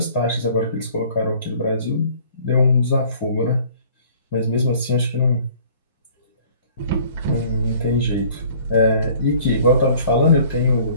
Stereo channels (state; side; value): inverted; both; correlation -0.54